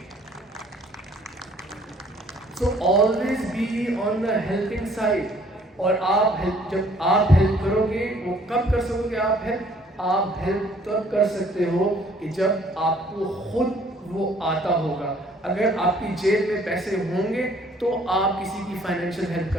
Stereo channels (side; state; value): both; normal; correlation 0.60